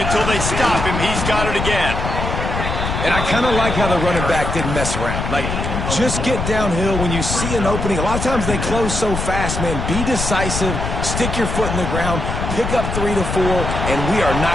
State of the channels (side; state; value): left; noise; rumble, 3 dB below the sound